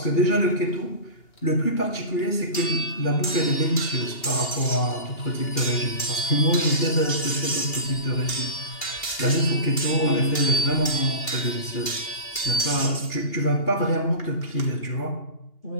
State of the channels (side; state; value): right; late; 2.8 ms